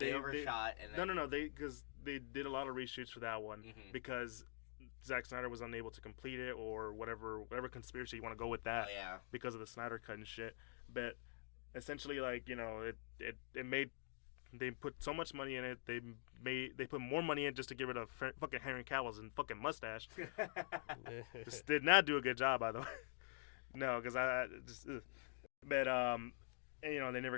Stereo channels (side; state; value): right; silent; digital silence